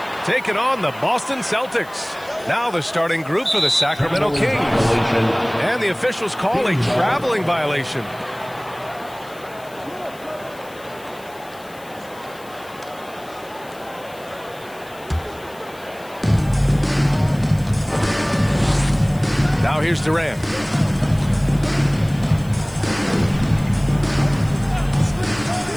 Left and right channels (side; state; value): left; noise; hiss, 23 dB below the sound